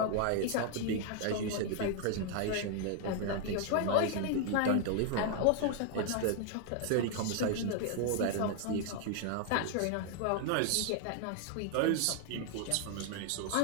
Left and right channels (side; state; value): both; different; correlation 0.00